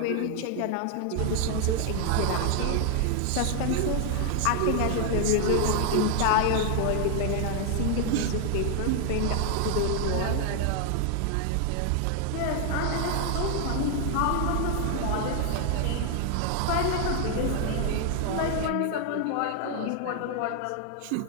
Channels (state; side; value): different; both; correlation 0.00